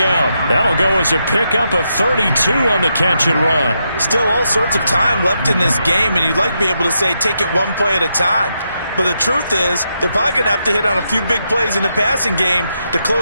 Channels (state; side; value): inverted; both; correlation -0.82